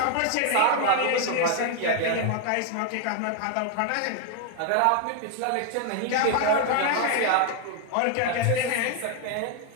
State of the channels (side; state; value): both; different; correlation 0.01